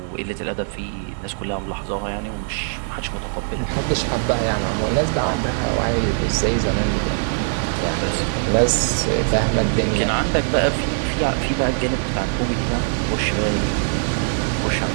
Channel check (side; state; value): left; silent; digital silence